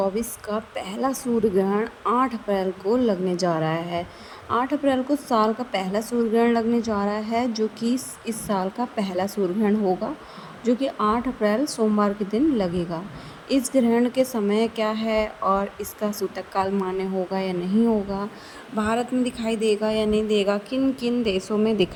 का पहला सूर्य ग्रहण 8 अप्रैल को लगने जा रहा है। 8 अप्रैल को साल का पहला सूर्य ग्रहण लगने जा रहा है, जो कि इस साल का पहला सूर्य ग्रहण होगा, जो कि 8 अप्रैल सोमवार के दिन लगेगा। इस ग्रहण के समय क्या है और इसका सूतक काल मान्य होगा या नहीं होगा, भारत में दिखाई देगा या नहीं देगा, किन किन देशों में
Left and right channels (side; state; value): both; identical; correlation 1.00